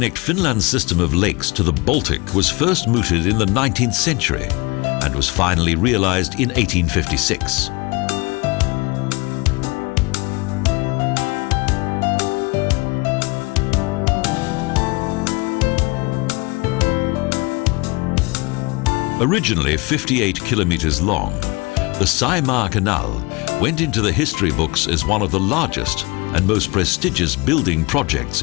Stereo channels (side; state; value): right; quieter; 26.2 dB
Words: Finland's system of lakes to the Baltic was first mooted in the 19th century and was finally realized in 1856. Originally 58 kilometers long, the Saimaa Canal went into the history books as one of the largest and most prestigious building projects